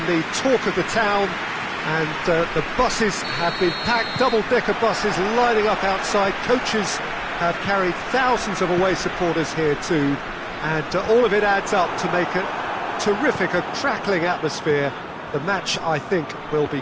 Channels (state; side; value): identical; both; correlation 1.00